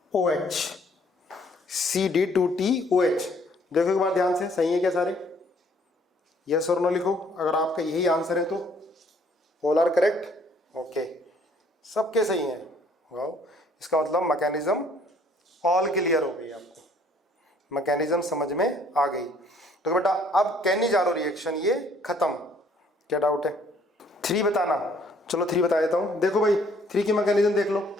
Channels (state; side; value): normal; both; correlation 0.62